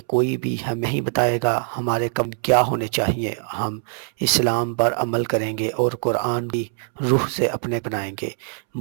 कोई भी हमें ही बताएगा हमारे कम क्या होने चाहिए। हम इस्लाम पर अमल करेंगे और कुरान की रूह से अपने बनाएंगे।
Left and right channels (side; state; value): left; silent; 64 dB below the other